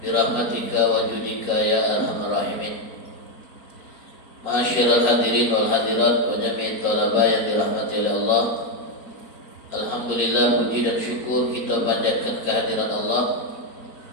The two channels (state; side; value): late; right; 4.4 ms